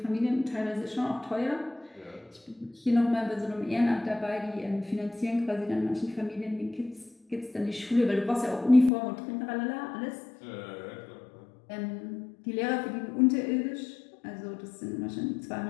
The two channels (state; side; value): drops out; right; at 8.9 s